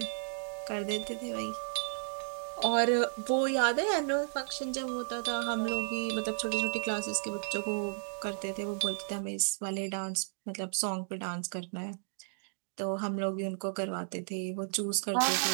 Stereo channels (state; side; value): silent; left; digital silence